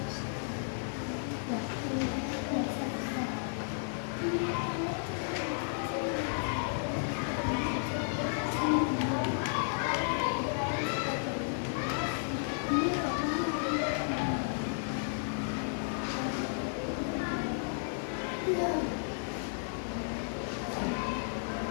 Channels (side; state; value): right; silent; digital silence